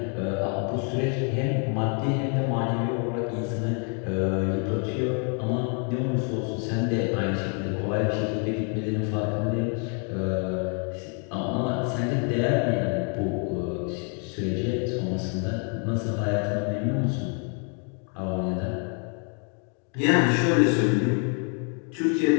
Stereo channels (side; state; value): right; quieter; 39.8 dB